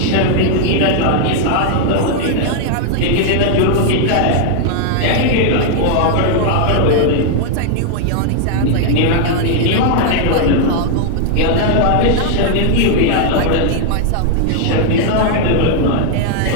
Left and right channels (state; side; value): different; both; correlation 0.00